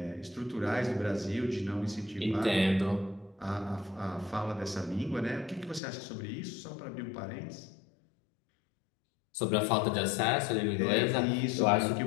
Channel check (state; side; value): drops out; right; at 5.8 s